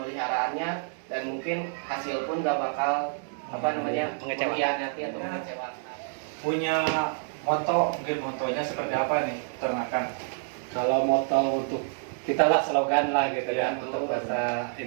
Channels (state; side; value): silent; left; digital silence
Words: dan mungkin hasil pun gak bakal mengkhianati atau mengecewakan. Punya moto, mungkin motonya seperti apa nih peternakan? Kalau moto untuk kita lah, slogan lah gitu Ya, kan, untuk bahasa